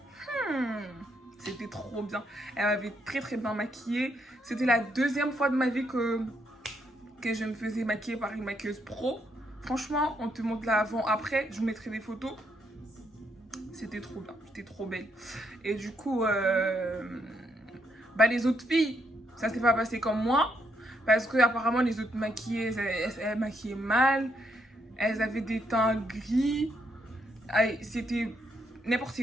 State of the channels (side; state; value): both; normal; correlation 0.76